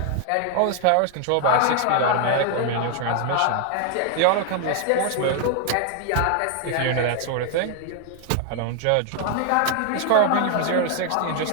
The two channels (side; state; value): both; different; correlation 0.00